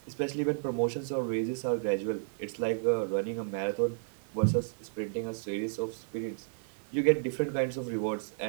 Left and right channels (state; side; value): silent; left; digital silence